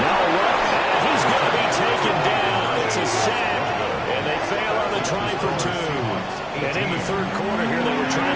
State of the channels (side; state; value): both; identical; correlation 1.00